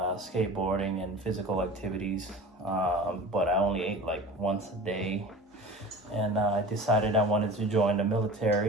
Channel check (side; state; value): both; normal; correlation 0.38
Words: skateboarding and physical activities, but I only ate like once a day. And I decided I wanted to join the